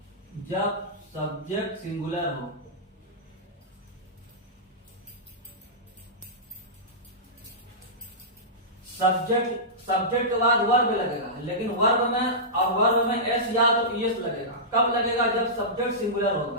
जब सब्जेक्ट सिंगुलर हो। सब्जेक्ट के बाद वर्ब लगेगा, लेकिन वर्ब में एस या तो ईएस लगेगा। कब लगेगा? जब सब्जेक्ट सिंगुलर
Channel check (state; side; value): normal; both; correlation -0.16